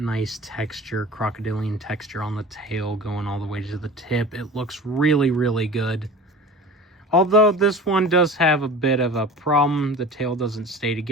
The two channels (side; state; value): both; normal; correlation 0.38